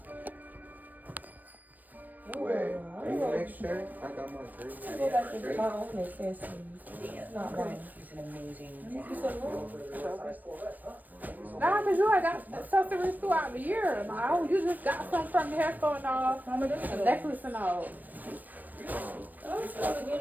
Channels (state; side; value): late; left; 0.086 ms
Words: Oh, Wait, I are you go- next shirt? I got my I green. go back to my own accessories. It's not mine. He's an amazing You said what? Nah, cause you had got accessories throughout the year. Like, oh, you just got some from the hair store and all, Mama, this a is necklace and all. I was started